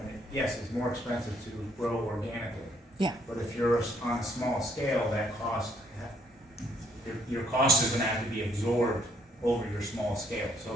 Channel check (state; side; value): normal; both; correlation 0.68